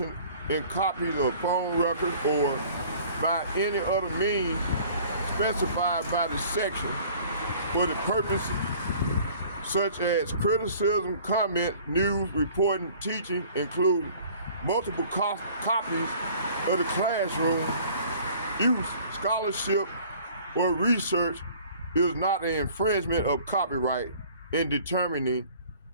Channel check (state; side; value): inverted; both; correlation -0.50